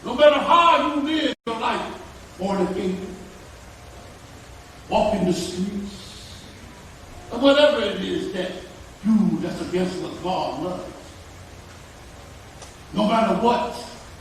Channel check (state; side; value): identical; both; correlation 1.00